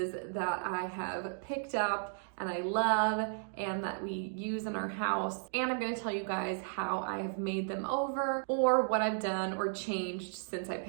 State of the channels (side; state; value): left; silent; digital silence